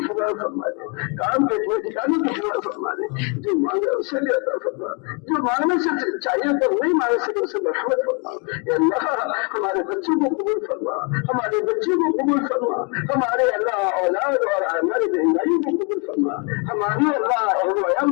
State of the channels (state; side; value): quieter; right; 35.2 dB